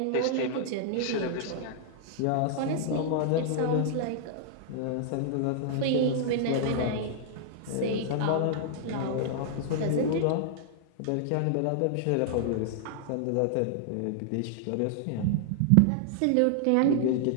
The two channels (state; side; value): different; both; correlation -0.01